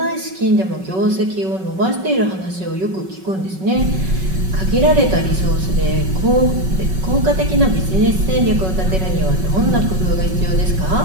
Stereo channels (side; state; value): left; late; 5.3 ms